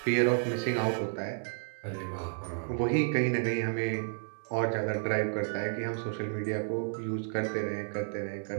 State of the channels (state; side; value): silent; left; digital silence